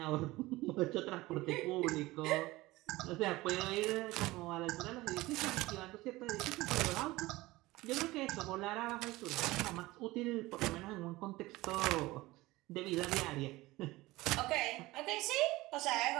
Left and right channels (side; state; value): left; quieter; 19.5 dB